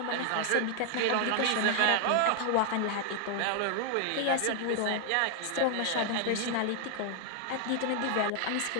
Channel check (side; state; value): both; different; correlation 0.00